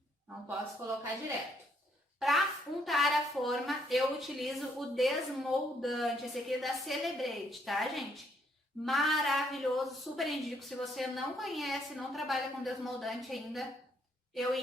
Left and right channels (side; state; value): both; normal; correlation 0.71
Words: Não posso colocar direto. Para untar a forma, eu utilizo o desmoldante, esse aqui é da Celebrate, tá, gente? Maravilhoso, super indico. Se você não conhece, não trabalha com desmoldante ainda, eu